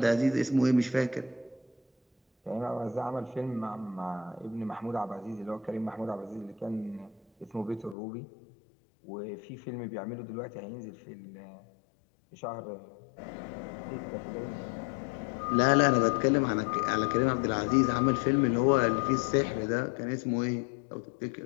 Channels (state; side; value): drops out; right; at 8.0 s